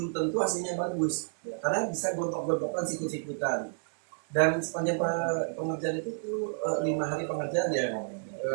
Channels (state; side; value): silent; left; 58 dB below the other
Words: tentu hasilnya bagus. Karena bisa gontok-gontokan, sikut-sikutan. Dan sepanjang pengerjaan itu tuh 5 hari pengerjaan ya,